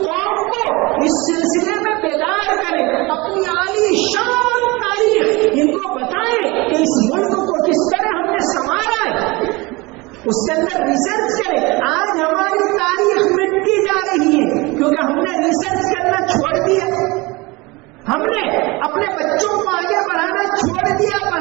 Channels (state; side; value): quieter; left; 23.9 dB